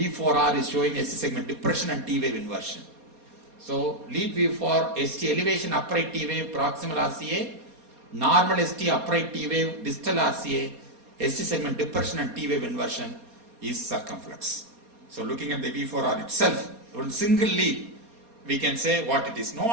is showing ST segment depression and T wave inversion. So lead V4, ST elevation upright T wave proximal RCA, normal ST upright T wave distal RCA, ST segment depression and T wave inversion is circumflex. So looking at the V4R itself, one single lead, we can say what it is. No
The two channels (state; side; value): late; left; 4.2 ms